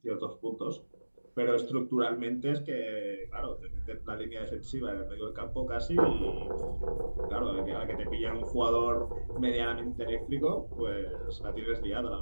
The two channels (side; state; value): both; inverted; correlation -1.00